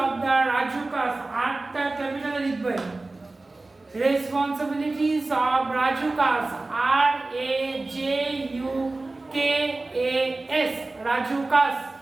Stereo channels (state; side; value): quieter; left; 3.2 dB